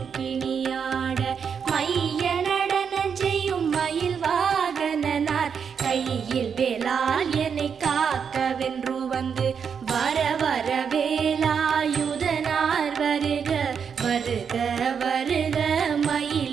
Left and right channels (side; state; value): left; quieter; 6.8 dB